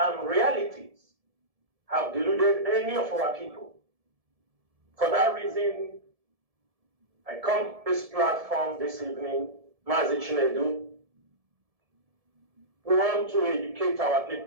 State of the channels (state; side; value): late; left; 1.7 ms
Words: realities have deluded any of our people. For that reason, I come to this platform this evening, Maazi Chinedu. We want to educate our